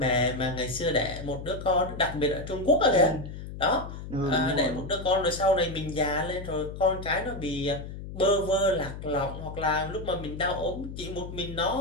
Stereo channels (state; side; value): noise; left; hum, 10 dB below the sound